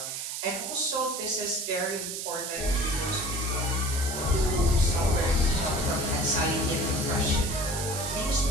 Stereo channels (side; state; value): right; noise; hiss, 5 dB below the sound